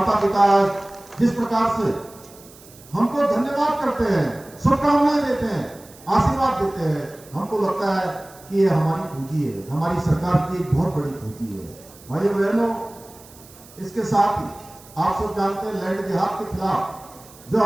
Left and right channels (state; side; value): noise; right; hiss, 22 dB below the sound